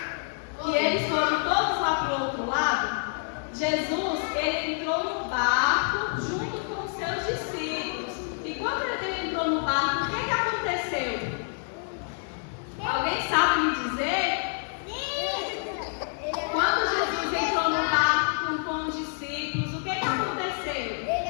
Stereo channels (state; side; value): silent; right; 60 dB below the other